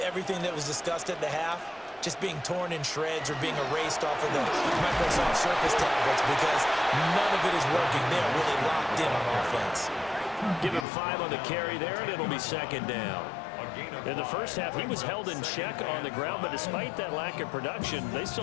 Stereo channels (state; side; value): drops out; right; at 10.9 s